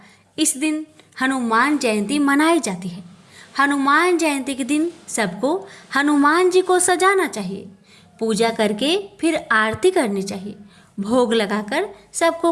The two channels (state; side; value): identical; both; correlation 1.00